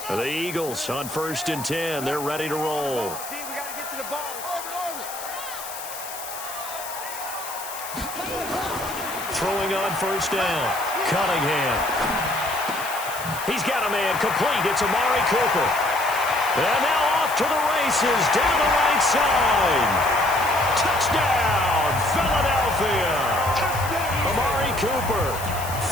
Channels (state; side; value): noise; left; hiss, 11 dB below the sound